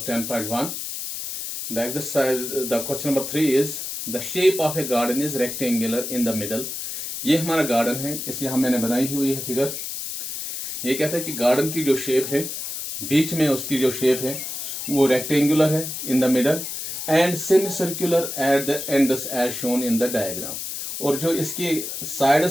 The question number 3 is the shape of a garden is rectangular in the middle. ये हमारा गार्डन है, इसलिए हम मैंने बनाई हुई है फिगर। ये कहता है कि गार्डन की जो शेप है, बीच में उसकी जो शेप है वो रेक्टेंगुलर है in the middle and semi circular at the ends as shown in the diagram. और जो इसकी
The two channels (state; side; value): noise; left; hiss, 6 dB below the sound